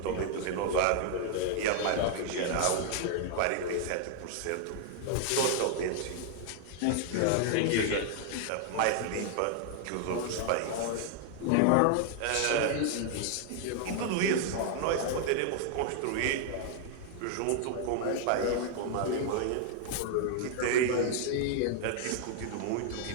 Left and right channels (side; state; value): both; different; correlation 0.00